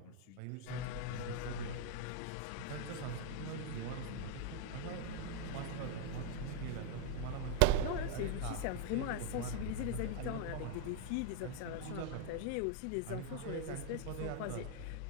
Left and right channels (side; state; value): both; different; correlation 0.00